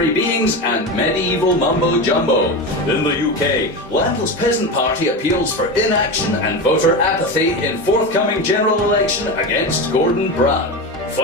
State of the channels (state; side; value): normal; both; correlation 0.21